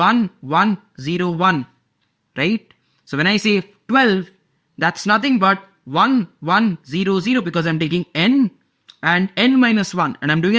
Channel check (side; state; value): both; identical; correlation 1.00